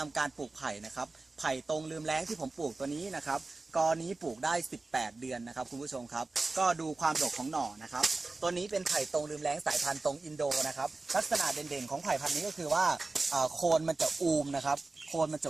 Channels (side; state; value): left; quieter; 3.5 dB